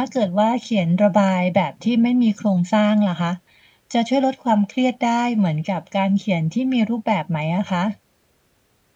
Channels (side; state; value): both; identical; correlation 1.00